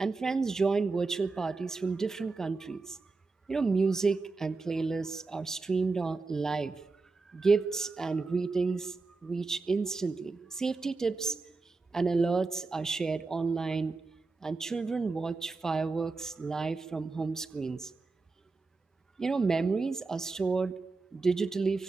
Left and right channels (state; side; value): quieter; left; 3.9 dB